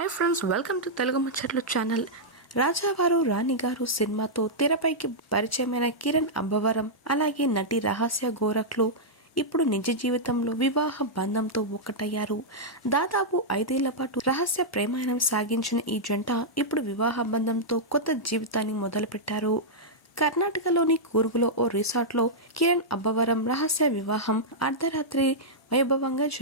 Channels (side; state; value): both; normal; correlation -0.08